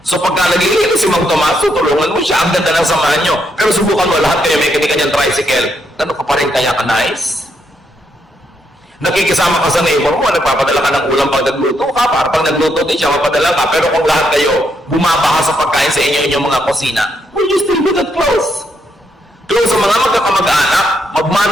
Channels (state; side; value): normal; both; correlation 0.78